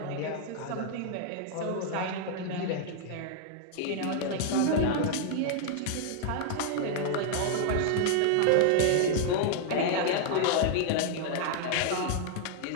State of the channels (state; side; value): different; both; correlation 0.00